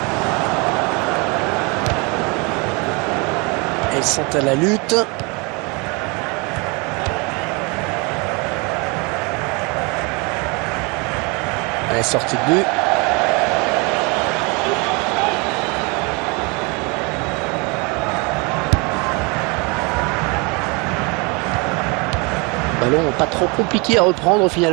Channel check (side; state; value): left; quieter; 29.4 dB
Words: Ils sont à la lutte. Elle est sortie de but. Ballon pas trop compliqué à reprendre